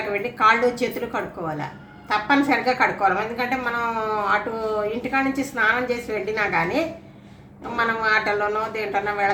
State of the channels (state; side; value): identical; both; correlation 1.00